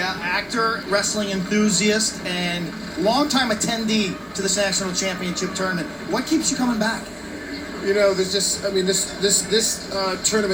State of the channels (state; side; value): identical; both; correlation 1.00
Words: actor, wrestling enthusiast, and longtime attendee to this national championship tournament. What keeps you coming back? You know, there's just, I mean, this